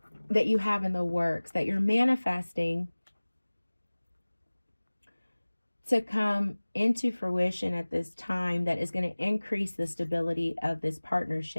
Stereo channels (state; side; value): inverted; both; correlation -1.00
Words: that you have in the works, that you're manifesting to come into fruition at this time, that is going to increase the stability of this